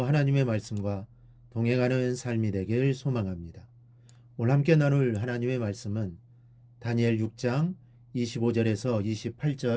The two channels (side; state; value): both; identical; correlation 1.00